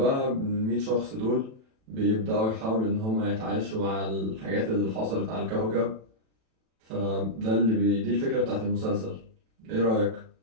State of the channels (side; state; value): left; late; 36 ms